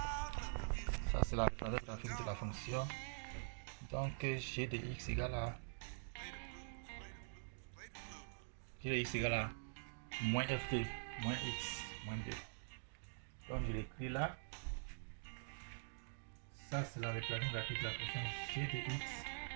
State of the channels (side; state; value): left; silent; digital silence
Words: Ça c'est la représentation graphique de la fonction. Donc g de x égale à moins f2 moins x moins 2. Donc je l'écris là. Ça c'est la représentation graphique de la fonction g de x